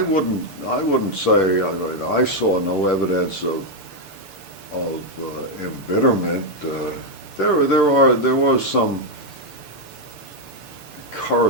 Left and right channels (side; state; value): right; late; 6.8 ms